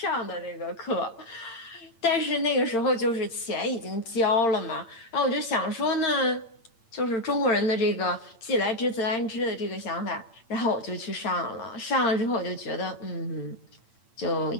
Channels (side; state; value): right; late; 8.8 ms